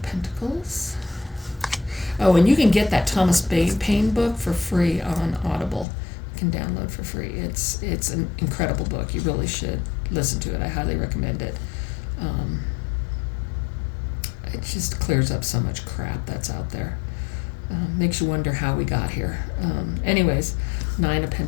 Pentacles. Oh, and you can get that Thomas Paine book for free on Audible. You can download for free. It's an incredible book. You really should listen to it. I highly recommend it. It just clears up so much crap that's out there. Makes you wonder how we got here. Anyways, 9 of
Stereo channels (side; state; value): right; drops out; at 5.9 s